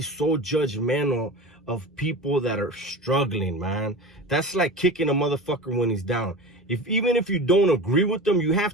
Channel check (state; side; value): normal; both; correlation 0.32